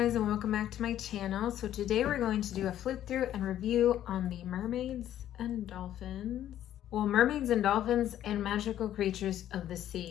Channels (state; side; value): quieter; right; 11.7 dB